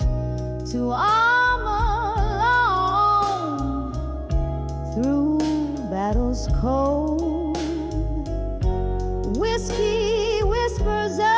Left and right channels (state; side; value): identical; both; correlation 1.00